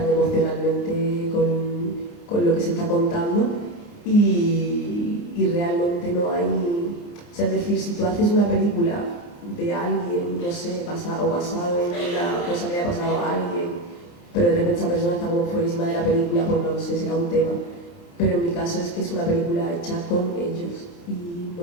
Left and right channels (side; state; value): right; late; 29 ms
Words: emocionalmente con lo que se está contando, y realmente no hay... O sea, es decir, si tú haces una película de alguien, no sé, basado en una cosa que haya pasado a alguien, pero de repente esa persona está como fuerísima de la película, pues no lo sé, será un tema. Pero en mi caso es que es una película hecha con ellos, y